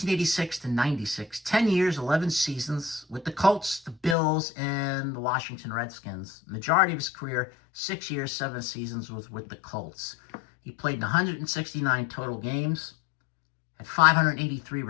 to 96, 10 years, 11 seasons with the Colts, the Bills, and the Washington Redskins. Majority of his career, 6 years, 7 seasons, was with the Colts. He played in 169 total games, had 583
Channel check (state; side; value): drops out; right; at 4.2 s